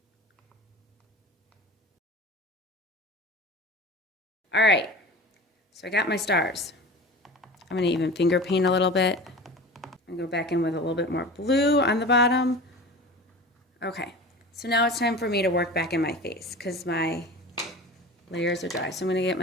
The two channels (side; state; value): both; normal; correlation 0.35